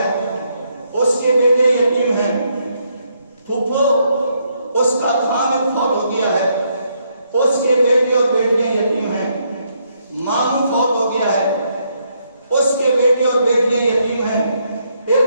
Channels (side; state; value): both; inverted; correlation -0.75